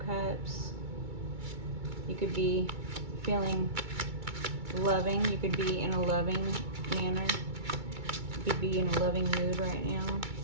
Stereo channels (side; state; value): left; late; 2.2 ms